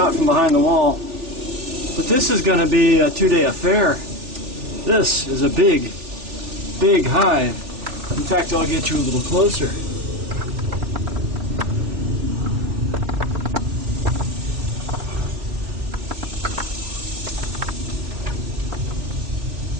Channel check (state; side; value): late; left; 3.4 ms